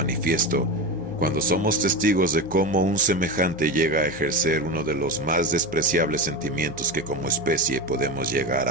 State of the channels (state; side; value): noise; left; hum, 18 dB below the sound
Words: cuando somos testigos de cómo un semejante llega a ejercer uno de los más despreciables sentimientos que como especie podemos llegar